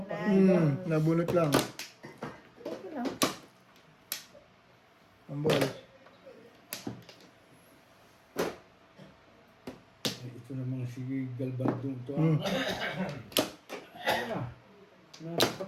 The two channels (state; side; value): identical; both; correlation 1.00